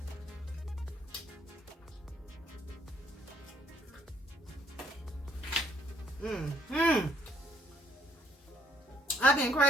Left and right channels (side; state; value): both; normal; correlation 0.66